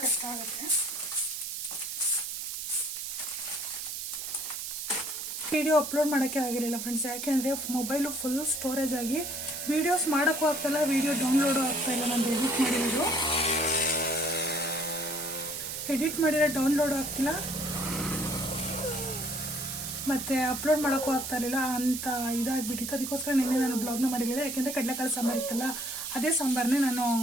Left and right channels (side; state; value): right; noise; hiss, 5 dB below the sound